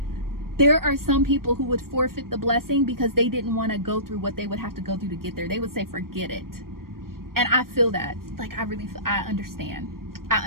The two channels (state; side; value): late; left; 0.92 ms